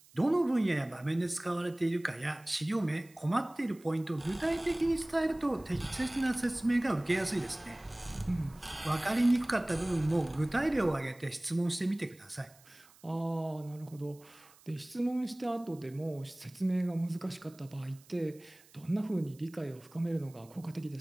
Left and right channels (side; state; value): right; noise; hiss, 26 dB below the sound